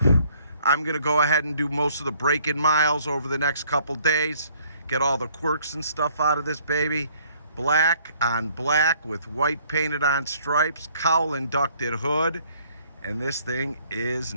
I'm gonna go ahead and do most of the break-in miles over the next couple days, get all the quirks and stuff out of this baby. Black on black with white painted on stripes, cowl inducted hood, and this thing is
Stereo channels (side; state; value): both; inverted; correlation -0.61